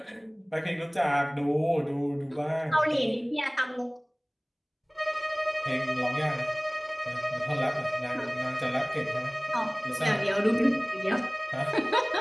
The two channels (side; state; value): both; identical; correlation 1.00